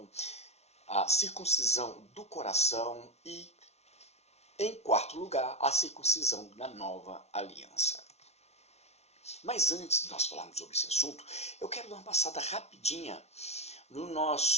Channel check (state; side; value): late; right; 0.31 ms